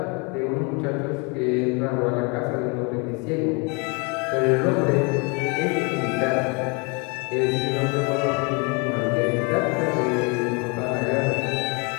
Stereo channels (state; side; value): quieter; right; 30.6 dB